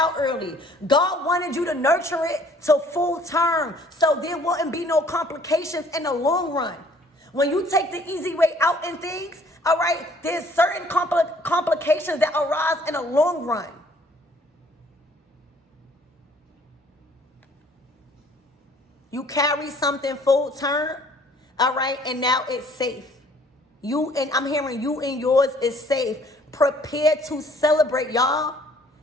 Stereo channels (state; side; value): normal; both; correlation 0.58